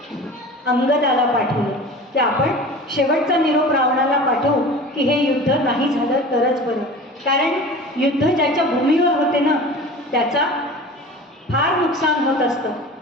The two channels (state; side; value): normal; both; correlation 0.38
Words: अंगदाला पाठवलं की आपण शेवटचा निरोप रावणाला पाठवू की हे युद्ध नाही झालं तरच बरं. कारण युद्ध ज्याच्या भूमीवर होते ना त्याचा फार नुकसान होत असतं.